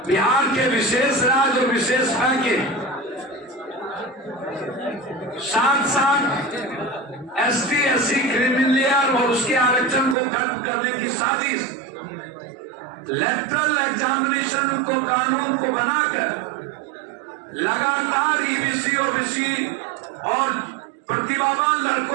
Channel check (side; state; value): left; drops out; at 10.2 s